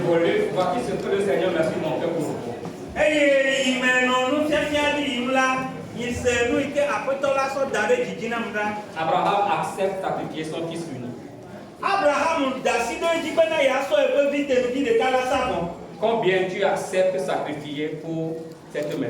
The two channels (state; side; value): identical; both; correlation 1.00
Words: volais, voici ce que le Seigneur m'a fait mon cœur pour vous. Abraham accepte sacrifier son fils unique. Combien tu acceptes sacrifier pour cette